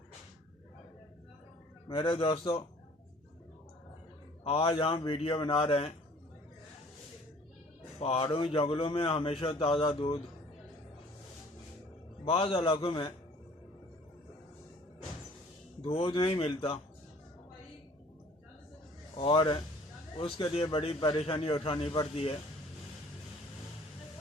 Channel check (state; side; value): normal; both; correlation 0.53